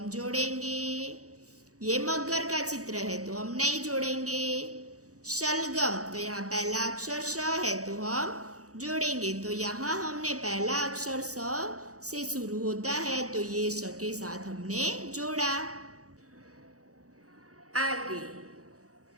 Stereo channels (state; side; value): late; left; 0.66 ms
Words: जोड़ेंगे। ये मगर का चित्र है तो हम नहीं जोड़ेंगे। शलगम, तो यहाँ पहला अक्षर श है तो हम जोड़ेंगे। तो यहाँ हमने पहला अक्षर स से शुरू होता है, तो ये श के साथ हमने जोड़ा। आगे